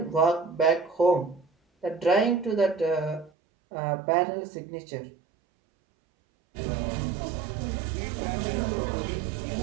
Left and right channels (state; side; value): drops out; left; at 3.3 s